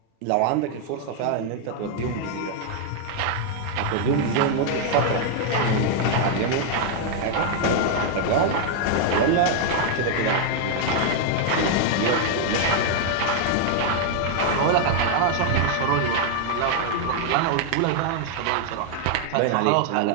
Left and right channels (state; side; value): different; both; correlation 0.00